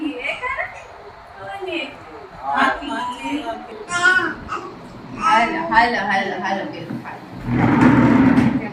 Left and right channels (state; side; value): identical; both; correlation 1.00